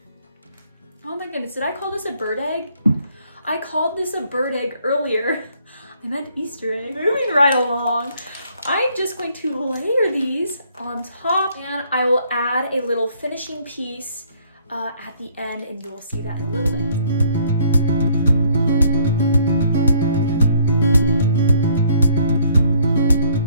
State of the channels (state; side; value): inverted; both; correlation -0.64